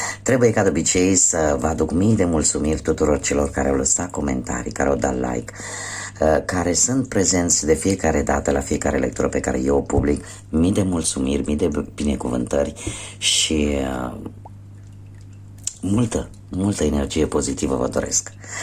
Trebuie ca de obicei să vă aduc mii de mulțumiri tuturor celor care au lăsat comentarii, care au dat like, care sunt prezenți de fiecare dată la fiecare lectură pe care eu o public. Mii de mulțumiri, mii de binecuvântări și multă energie pozitivă vă doresc.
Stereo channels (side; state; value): both; identical; correlation 1.00